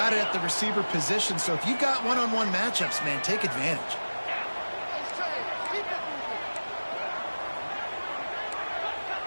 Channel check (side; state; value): both; inverted; correlation -1.00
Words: it at the receiver position. So if you've got one-on-one matchups, man, take advantage.